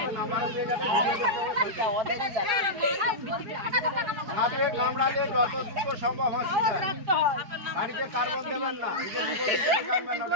নাম্বার দিয়ে যাবে সাপে কামড়ালে যত দ্রুত সম্ভব হসপিটাল বাড়িতে কার্বন দেবেন না নিজের মুখে কাটবেন না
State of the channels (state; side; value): late; left; 4.8 ms